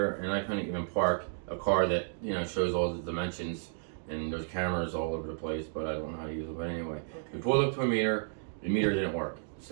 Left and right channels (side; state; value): left; silent; digital silence